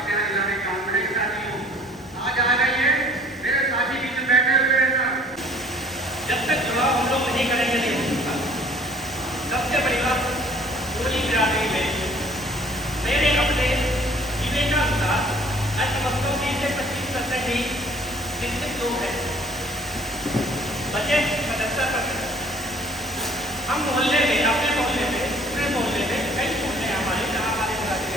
सबसे बड़ी बात पूरी बिरादरी में मेरे अपने विवेकानुसार अर्थव्यवस्था में से 25% ही शिक्षित लोग हैं, बचे 77%। हम मोहल्ले में, अपने मोहल्ले में, पूरे मोहल्ले में, कई मोहल्ले हमारे जहाँ हमारे बिरादरी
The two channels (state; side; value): normal; both; correlation 0.55